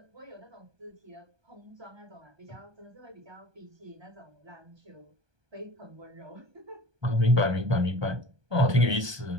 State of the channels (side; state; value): left; late; 1.2 ms